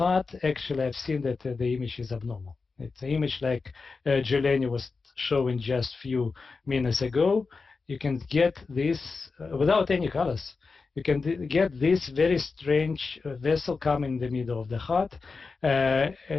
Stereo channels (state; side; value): quieter; right; 4.4 dB